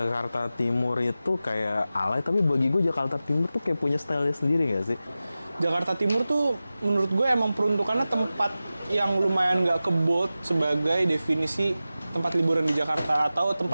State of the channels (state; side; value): inverted; both; correlation -0.95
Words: Timur itu kayak alay, tapi bagi gue Jakarta Timur tuh kayak punya style sendiri nggak sih? Jakarta Timur tuh menurut gue emang peruntukannya tempat yang lumayan nggak kebot sebagai definisi tempat liburan di Jakarta atau